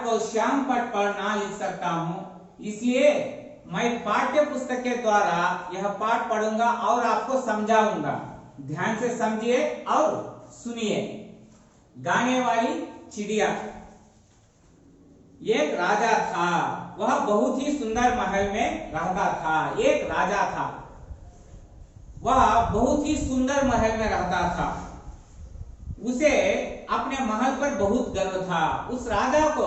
को श्याम पट पर ना लिख सकता हूं, इसलिए मैं पाठ्य पुस्तक के द्वारा यह पाठ पढ़ूंगा और आपको समझाऊंगा। ध्यान से समझिए और सुनिए। गाने वाली चिड़िया। एक राजा था, वह बहुत ही सुंदर महल में रहता था। एक राजा था, वह बहुत ही सुंदर महल में रहता था। उसे अपने महल पर बहुत गर्व था। उस राजा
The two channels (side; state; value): both; identical; correlation 1.00